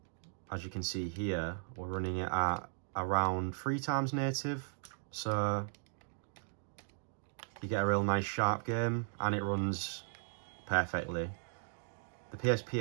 As you can see here, we're running it at around 3 times native. So you get a real nice sharp game, and it runs perfectly. The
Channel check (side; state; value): left; silent; digital silence